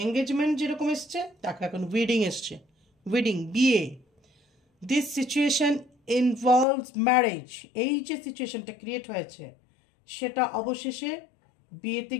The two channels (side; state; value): right; drops out; at 6.7 s